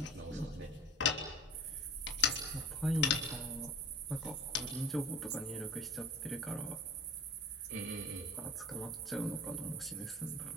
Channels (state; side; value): normal; both; correlation 0.40